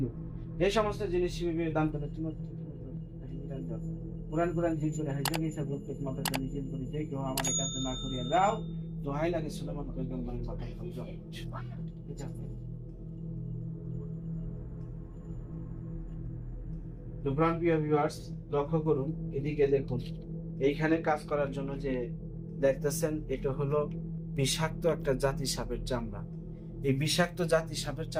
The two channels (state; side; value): identical; both; correlation 1.00